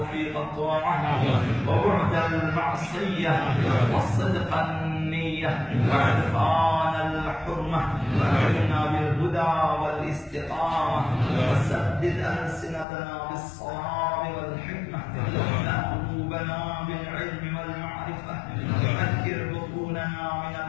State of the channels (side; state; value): right; drops out; at 12.9 s